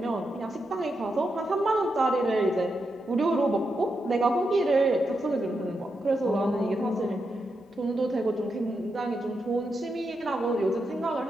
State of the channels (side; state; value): both; normal; correlation 0.85